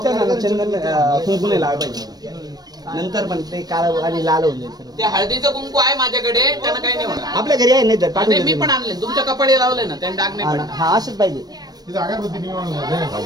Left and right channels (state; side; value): late; left; 0.19 ms